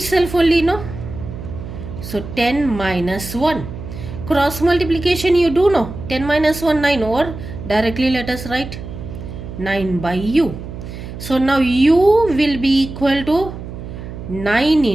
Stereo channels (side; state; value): right; noise; hum, 10 dB below the sound